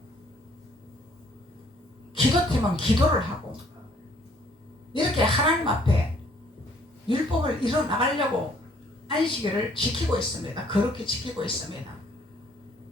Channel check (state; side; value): normal; both; correlation 0.61